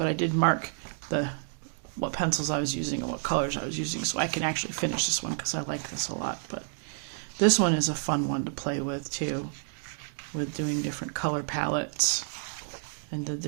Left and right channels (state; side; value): silent; left; digital silence